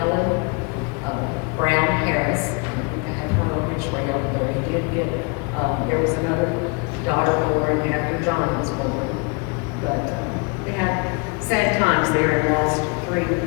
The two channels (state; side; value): quieter; right; 30.8 dB